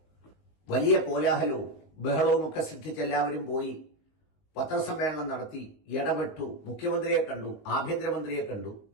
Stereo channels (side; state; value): right; late; 19 ms